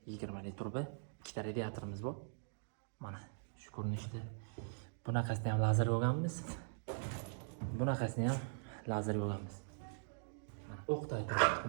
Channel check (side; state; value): left; silent; digital silence